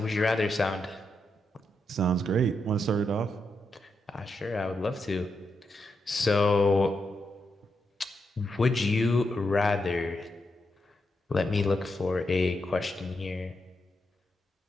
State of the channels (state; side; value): normal; both; correlation 0.84